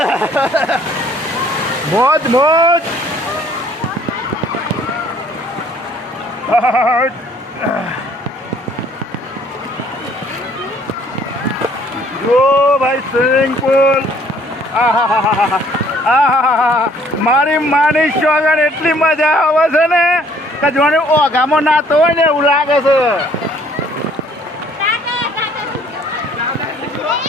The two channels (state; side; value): normal; both; correlation 0.59